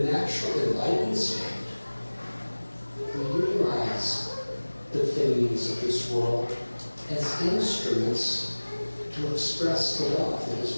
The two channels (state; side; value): inverted; both; correlation -1.00